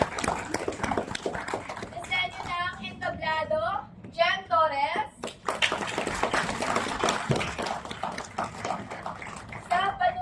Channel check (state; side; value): identical; both; correlation 1.00